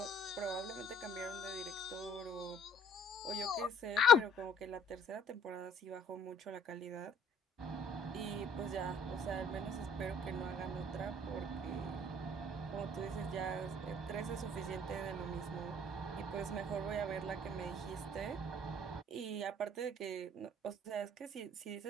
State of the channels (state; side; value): normal; both; correlation 0.59